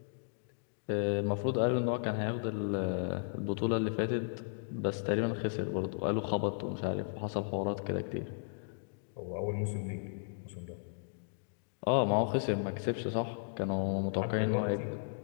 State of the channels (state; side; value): silent; right; digital silence